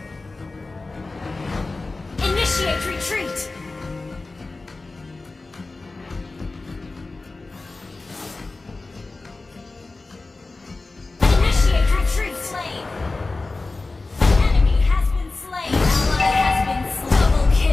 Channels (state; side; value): quieter; right; 3.4 dB